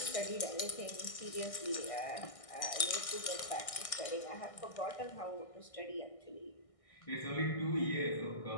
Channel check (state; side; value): late; right; 1.6 ms